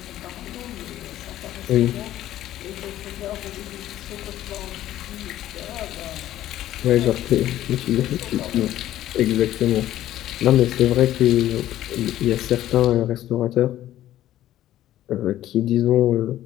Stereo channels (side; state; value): right; quieter; 13.3 dB